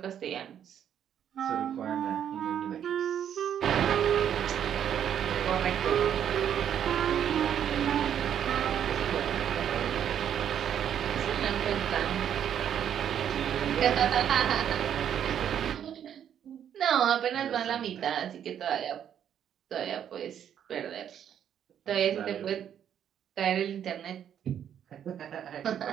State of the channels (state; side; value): quieter; left; 9.3 dB